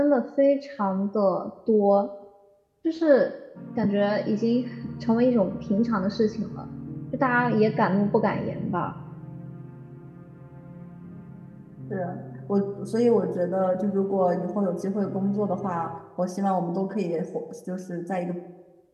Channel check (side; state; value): both; identical; correlation 1.00